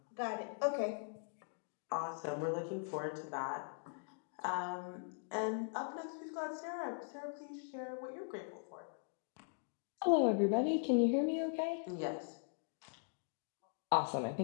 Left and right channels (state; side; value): silent; right; digital silence